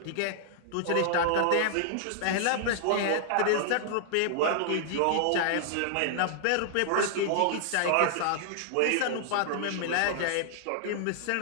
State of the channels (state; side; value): different; both; correlation -0.01